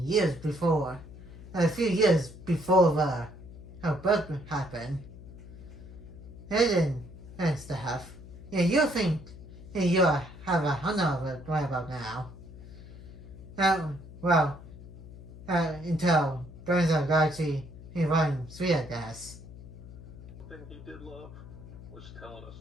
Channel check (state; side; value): noise; left; hum, 16 dB below the sound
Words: years before, a few years before her birth happened. And stuff. Yeah, you think you have a hundred of it right about now. Until Guardians of the Galaxy in Volume 3, I guess. The thing he did love was telling us